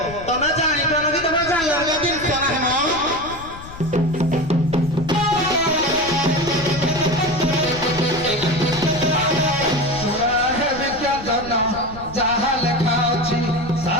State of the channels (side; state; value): left; noise; rumble, 15 dB below the sound